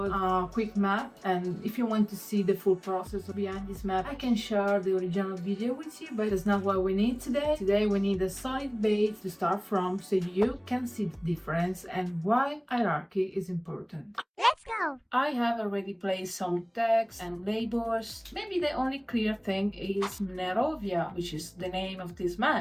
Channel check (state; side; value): identical; both; correlation 1.00